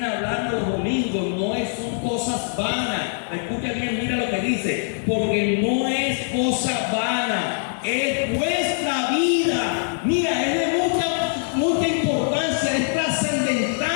hablando los domingos son cosas vanas. Escucha bien, mira lo que dice. Porque no es cosa vana, es vuestra vida. Mira, es de mucha importancia, es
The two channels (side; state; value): right; silent; digital silence